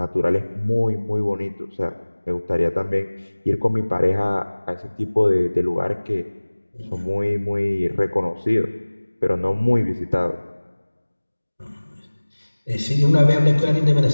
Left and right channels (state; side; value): inverted; both; correlation -1.00